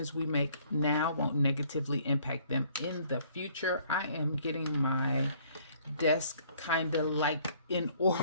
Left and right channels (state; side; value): inverted; both; correlation -0.61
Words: we make now won't negatively impact them in the future. I am getting my desk kind of like in